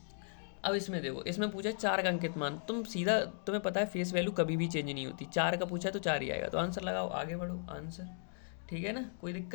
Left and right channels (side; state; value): right; silent; digital silence